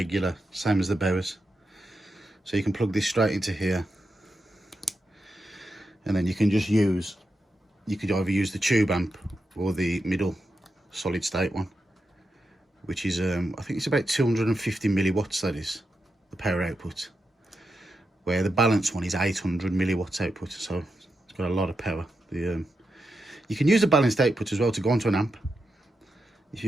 same as the Bowers. So you can plug this straight into here, and then you can just use, you could either use the tube amp or the middle solid state one, which is I think it's about 250 milliwatts, that is the power output, where the balanced one is 800 milliwatts output, so it's got a lot of power. You can use the balanced output as well to go onto an amp. If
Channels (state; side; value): normal; both; correlation 0.87